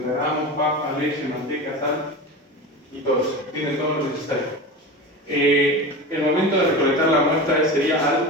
gramos, papa, leche, manteca, sal y todo eso. Tienen todo lo necesario. El momento de recolectar la muestra sería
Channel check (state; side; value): normal; both; correlation 0.28